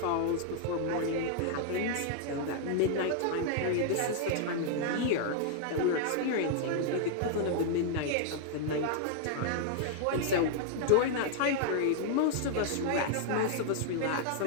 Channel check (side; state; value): both; different; correlation -0.01